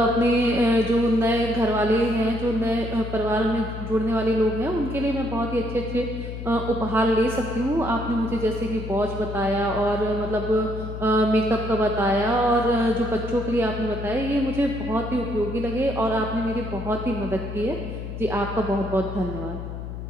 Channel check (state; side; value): noise; left; hum, 8 dB below the sound